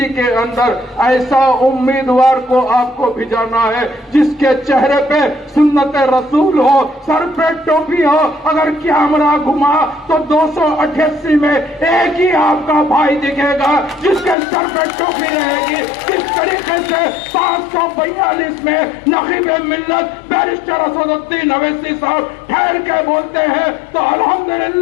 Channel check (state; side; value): drops out; right; at 14.4 s